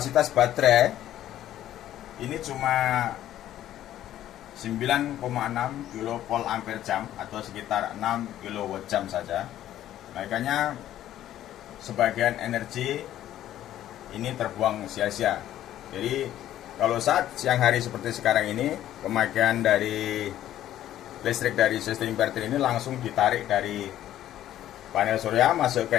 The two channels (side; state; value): right; quieter; 12.4 dB